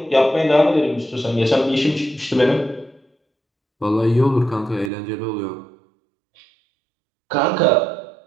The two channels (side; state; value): left; drops out; at 4.9 s